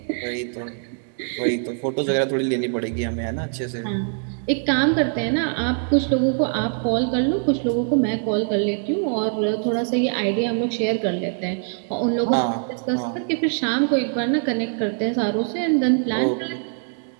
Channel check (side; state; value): left; silent; 57 dB below the other